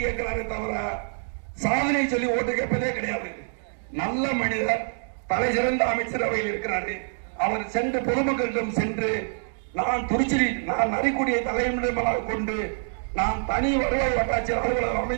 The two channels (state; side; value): silent; left; digital silence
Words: கேட்கிறாரு தவிர சாதனை சொல்லி ஓட்டு கேட்பதே கிடையாது. நல்ல மனிதர், தலை சிறந்த அமைச்சரவையில் இருக்கிறாரு. அவர் சென்று பொதுமக்களிடம் சென்று நான் நரிக்குடியை தலைமையிடமாக கொண்டு நான் தனி வருவாய் வட்டாட்சியர் அலுவலகம்